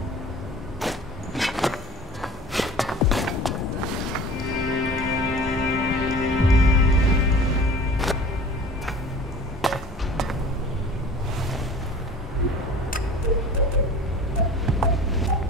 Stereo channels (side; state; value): both; normal; correlation 0.42